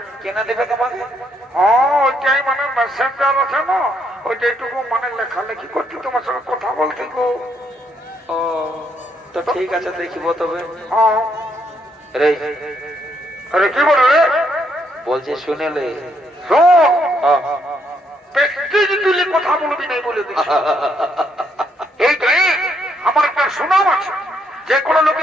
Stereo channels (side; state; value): both; normal; correlation 0.73